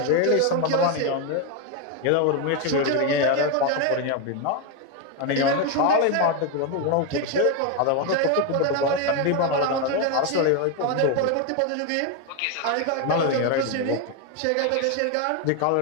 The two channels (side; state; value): both; different; correlation 0.02